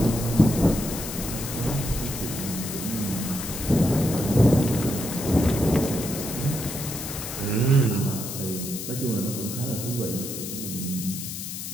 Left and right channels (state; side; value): noise; left; hiss, 7 dB below the sound